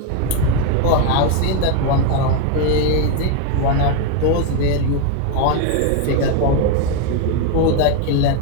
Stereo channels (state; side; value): different; both; correlation 0.02